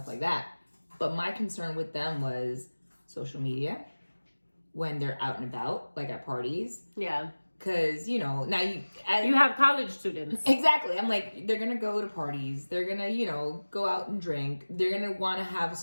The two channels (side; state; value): both; inverted; correlation -1.00